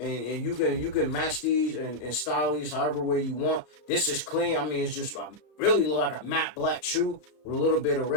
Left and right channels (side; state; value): right; late; 33 ms